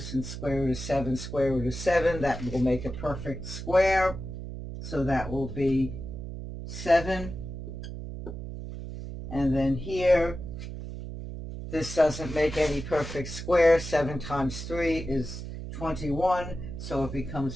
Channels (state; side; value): noise; right; hum, 8 dB below the sound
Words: square root of 7, square root of 7, that will make a perfect square. So that will be 7. And then here, this doesn't make any perfect square. 7 times 3 is 21. So it